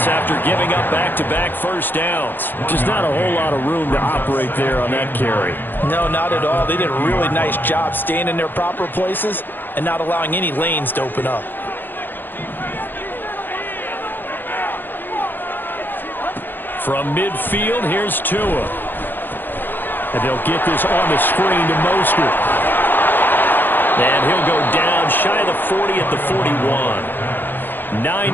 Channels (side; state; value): right; late; 0.093 ms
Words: after giving up back-to-back first downs. Just not a whole lot of room to operate there on that carry. No, not at all. They did a really nice job staying in their proper places and not allowing any lanes to open up. From midfield, here's Tua. And they'll get this on the screen to Mostert. And he'll go down shy of the 40 at the 41.